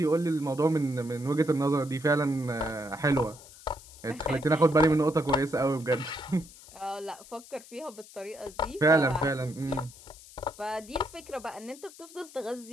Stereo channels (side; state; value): left; noise; hiss, 20 dB below the sound